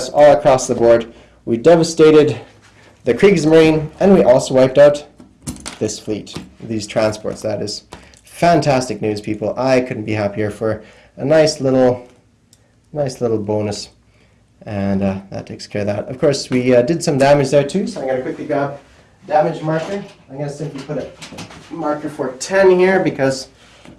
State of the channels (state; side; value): identical; both; correlation 1.00